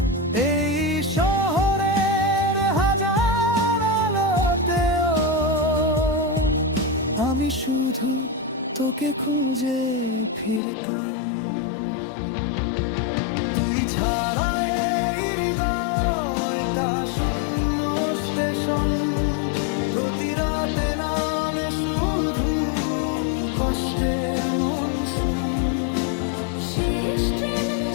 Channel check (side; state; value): right; drops out; at 10.6 s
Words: এই শহরের হাজার আলোতেও আমি শুধু তোকে খুঁজে ফিরতাম। তুই ছাড়া এই হৃদয়টা শূন্য স্টেশন, প্রতি রাতে নামে শুধু কষ্টের মনসুম। শেষ ট্রেন